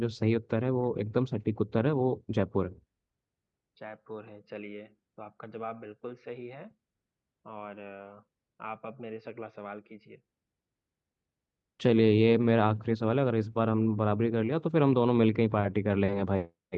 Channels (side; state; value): both; identical; correlation 1.00